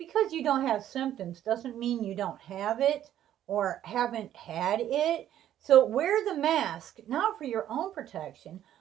you don't have symptoms doesn't mean you don't have it or haven't had it. So wear the mask, not for your own protection,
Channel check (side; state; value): left; quieter; 11.5 dB